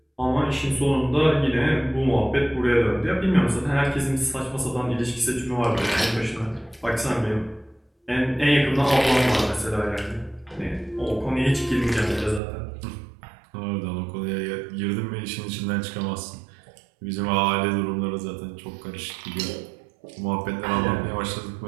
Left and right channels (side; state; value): left; drops out; at 12.4 s